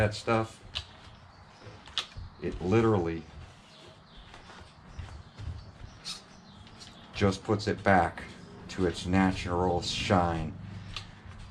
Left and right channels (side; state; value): both; identical; correlation 1.00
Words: stuff. It literally just puts it back to its natural shine.